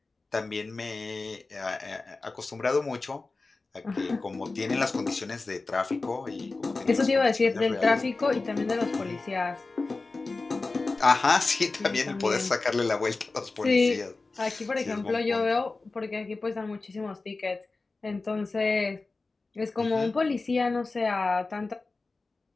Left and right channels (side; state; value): right; quieter; 3.6 dB